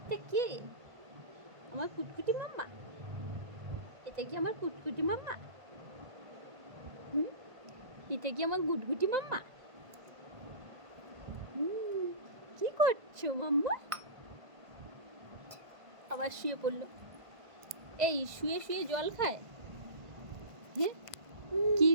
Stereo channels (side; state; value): left; late; 1.5 ms